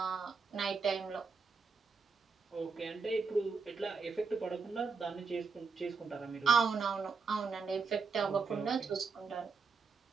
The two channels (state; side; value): quieter; left; 5.0 dB